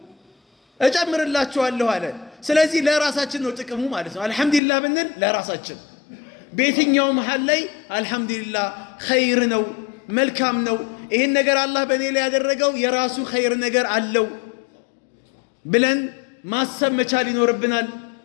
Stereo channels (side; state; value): right; drops out; at 4.6 s